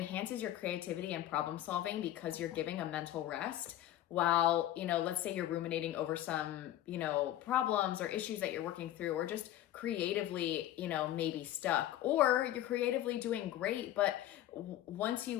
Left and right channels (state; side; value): quieter; right; 13.1 dB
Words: your creativity and problem solving because you're giving a mental rest while, let's say you're ruminating over some, problems or issues that you're working through, or just creatively, maybe stuck, or you're creatively doing great. But once